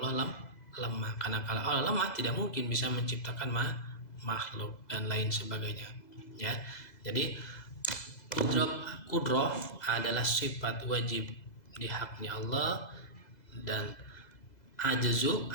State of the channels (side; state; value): right; late; 2.0 ms